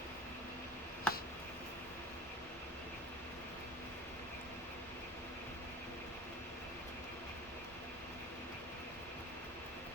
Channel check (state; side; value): normal; both; correlation 0.36